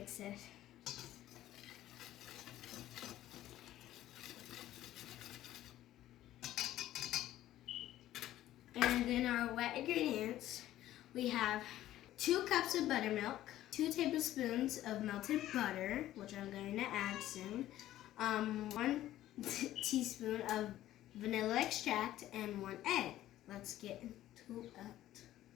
it. And then our wet ingredients, we have 2 cups of buttermilk, 2 tablespoons of melted butter, which I'm going to add soon, 1 teaspoon of vanilla extract, and 1 egg. Let's get into it.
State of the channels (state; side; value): quieter; right; 13.8 dB